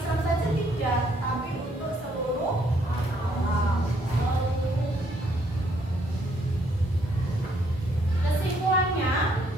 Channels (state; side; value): normal; both; correlation 0.69